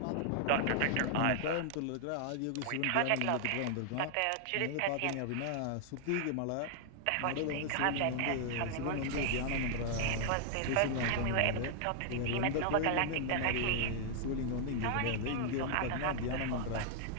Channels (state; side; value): different; both; correlation 0.00